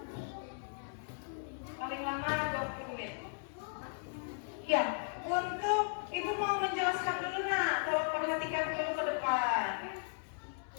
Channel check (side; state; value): right; silent; digital silence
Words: Paling lama 20 menit. Ya, untuk ibu mau menjelaskan dulu nak, tolong perhatikan dulu ke depan.